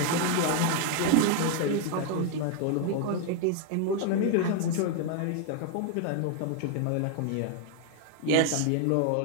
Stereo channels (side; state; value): both; different; correlation 0.00